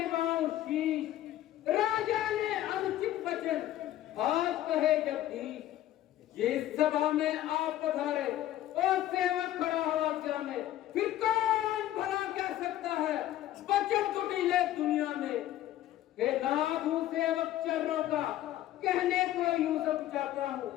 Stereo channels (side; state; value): right; quieter; 13.4 dB